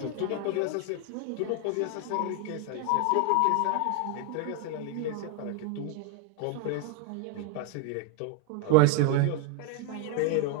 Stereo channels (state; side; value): different; both; correlation 0.01